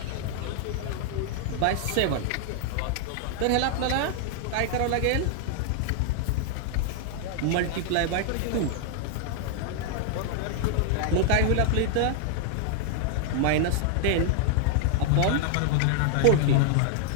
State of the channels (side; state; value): both; different; correlation 0.00